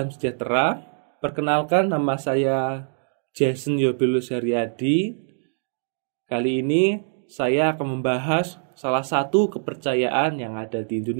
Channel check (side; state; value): left; silent; digital silence